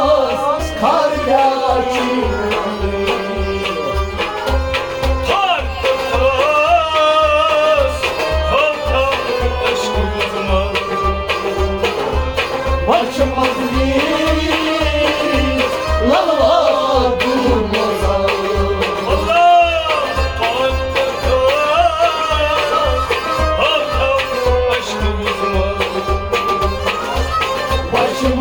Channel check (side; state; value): both; identical; correlation 1.00